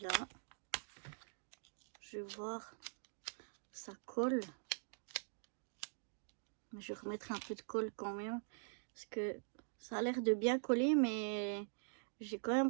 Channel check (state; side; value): silent; left; digital silence